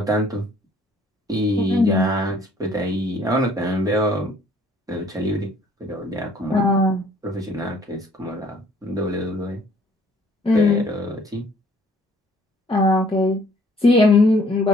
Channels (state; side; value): normal; both; correlation 0.59